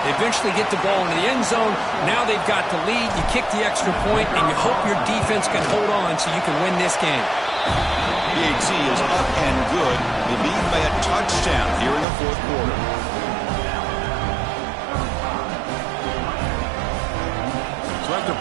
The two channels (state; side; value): drops out; left; at 12.1 s